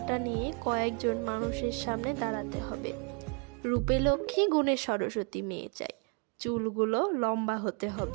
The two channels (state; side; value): quieter; left; 35.4 dB